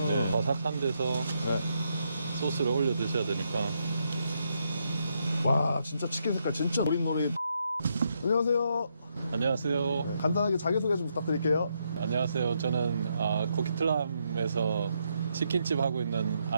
네, 바삭한 데서 네. 소스를 올려 드셔야 되니까. 와, 진짜 치킨 색깔 진짜 노릇노릇. 안녕하세요. 안녕하세요. 간단하게 자기소개 좀 부탁드릴게요. 안녕하세요. 저는 코키틀람에서 치킨집 하고 있는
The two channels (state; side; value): inverted; both; correlation -0.78